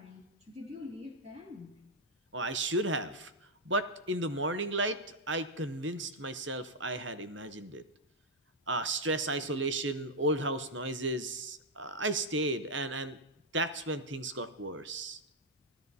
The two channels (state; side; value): normal; both; correlation -0.03